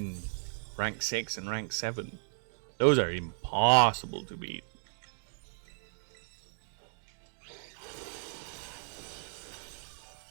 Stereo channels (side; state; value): left; silent; digital silence